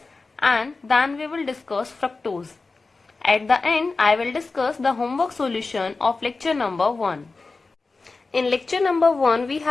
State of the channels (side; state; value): right; quieter; 3.8 dB